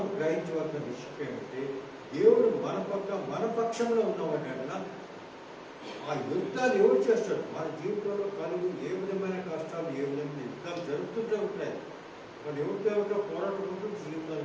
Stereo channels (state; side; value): identical; both; correlation 1.00